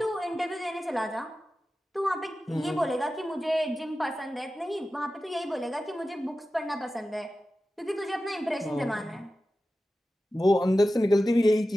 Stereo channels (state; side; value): normal; both; correlation 0.94